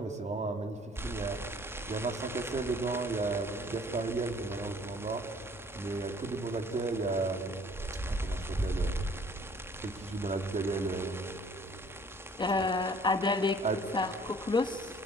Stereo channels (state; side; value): normal; both; correlation 0.56